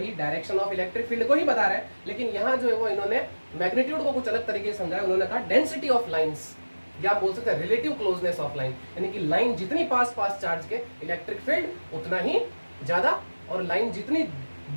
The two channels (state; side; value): inverted; both; correlation -1.00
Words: डायरेक्शन ऑफ इलेक्ट्रिक फील्ड को ही बता रहा है, लेकिन यहाँ जो है वो इन्होंने मैग्नीट्यूड को कुछ अलग तरीके से समझाया। उन्होंने कहा डेंसिटी ऑफ लाइंस, या आप बोल सकते हैं रिलेटिव क्लोजनेस ऑफ लाइन, यानी कि लाइन जितनी पास चार्ज के इलेक्ट्रिक फील्ड उतना ही ज्यादा, और लाइन जितनी